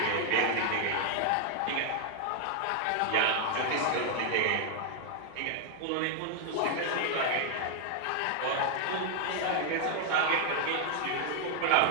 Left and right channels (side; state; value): both; different; correlation 0.00